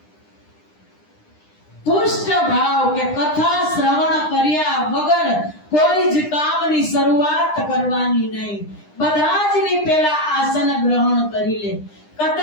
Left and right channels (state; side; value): late; right; 9.9 ms